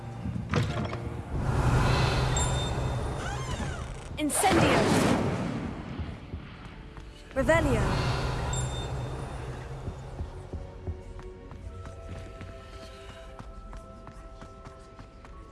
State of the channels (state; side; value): identical; both; correlation 1.00